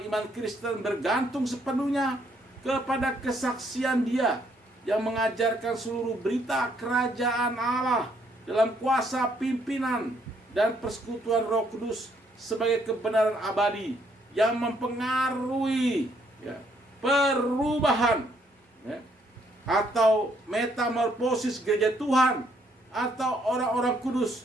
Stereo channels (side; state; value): both; normal; correlation 0.70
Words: iman Kristen bergantung sepenuhnya kepada kesaksian Dia yang mengajarkan seluruh berita kerajaan Allah dalam kuasa pimpinan dan persekutuan Roh Kudus sebagai kebenaran abadi yang mempengaruhi, ya, perubahan, ya, atau metamorfosis gereja Tuhan atau orang-orang